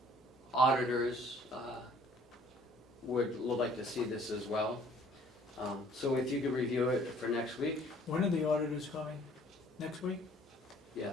auditors would like to see this as well. So if you could review it for next week, When are the auditors coming? Next week?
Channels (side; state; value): both; normal; correlation 0.57